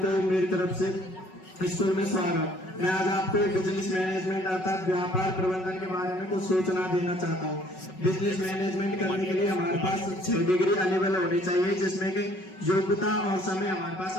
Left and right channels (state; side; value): late; right; 5.4 ms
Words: मेरी तरफ से स्कूल में स्वागत। मैं आज आपको बिजनेस मैनेजमेंट अर्थात व्यापार प्रबंधन के बारे में कुछ सूचना देना चाहता हूँ। बिजनेस मैनेजमेंट करने के लिए हमारे पास 6 डिग्री अवेलेबल होनी चाहिए, जिसमें कि योग्यता और समय हमारे पास